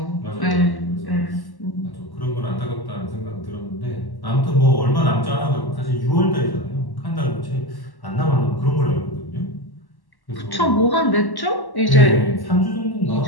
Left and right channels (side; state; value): right; late; 1.1 ms